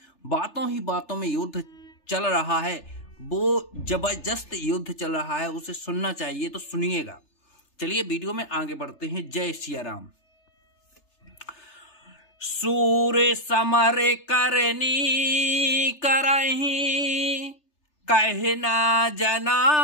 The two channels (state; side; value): late; right; 3.3 ms